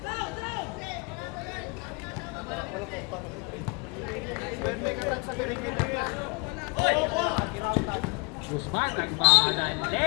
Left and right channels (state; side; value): quieter; right; 29.3 dB